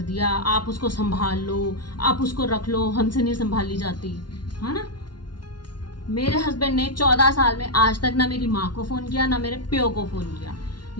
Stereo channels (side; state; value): right; late; 0.70 ms